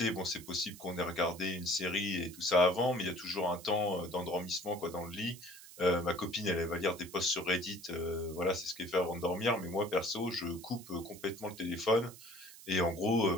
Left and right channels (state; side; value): noise; right; hiss, 17 dB below the sound